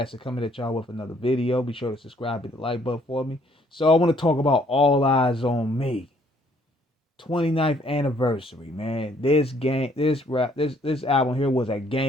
coming at y'all with another video. Be sure to subscribe, hit the like button for me. So I want to talk about All Eyes on Me. 29th anniversary, man. This album here was a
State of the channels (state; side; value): normal; both; correlation 0.64